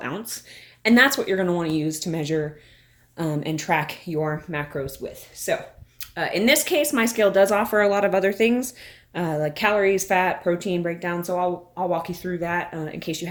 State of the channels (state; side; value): identical; both; correlation 1.00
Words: ounce. And that's what you're going to want to use to measure and track your macros with. So in this case, my scale does offer a lot of other things like calories, fat, protein breakdown. So I'll walk you through that in case you